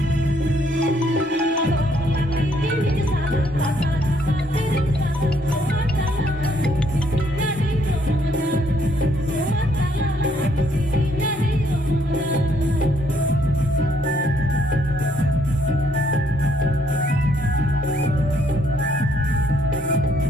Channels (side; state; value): both; normal; correlation 0.69